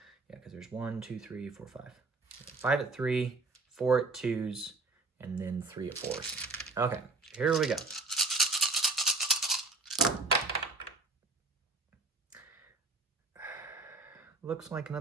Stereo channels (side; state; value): left; quieter; 3.7 dB